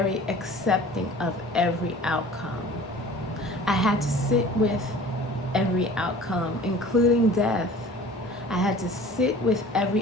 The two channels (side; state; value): both; normal; correlation 0.45